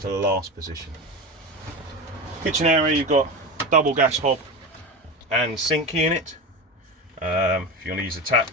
the last position. Kitchen area, you've got double gas hob and sink unit. If you want to use a tap,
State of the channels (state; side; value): normal; both; correlation 0.23